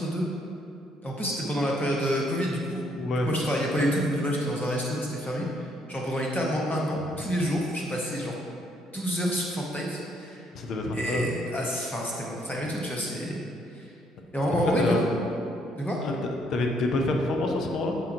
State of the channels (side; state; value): both; normal; correlation 0.70